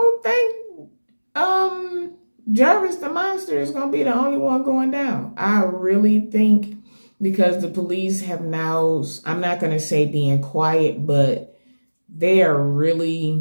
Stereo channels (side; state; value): both; inverted; correlation -1.00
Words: think Jarvis the Monster is going to be the only one going down. I really think, because the police have now, I'm not going to say being quiet, but they are